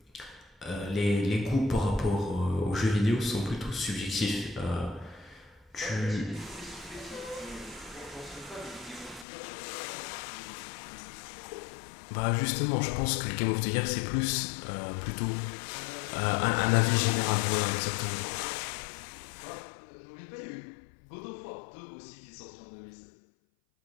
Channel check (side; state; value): right; drops out; at 9.2 s